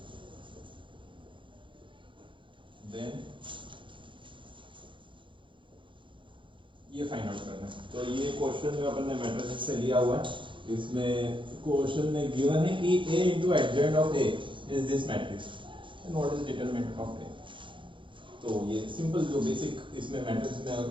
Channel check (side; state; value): left; late; 0.24 ms